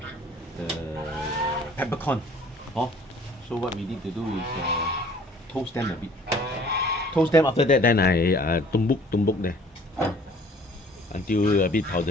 peppercorn. So what we need to do is toast them a bit. Toast them, after that then I tumbuk there until a bit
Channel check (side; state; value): both; normal; correlation 0.53